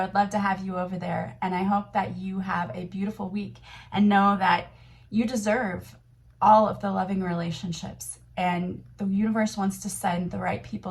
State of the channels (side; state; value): both; identical; correlation 1.00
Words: would love to have you over there. And I hope that you have a beautiful week and know that you deserve all of the loving relationships. And the universe wants to send the right